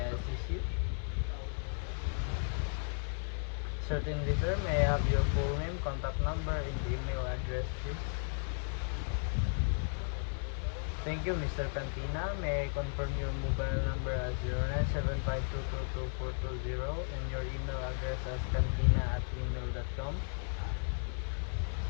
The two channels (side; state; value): right; silent; 54 dB below the other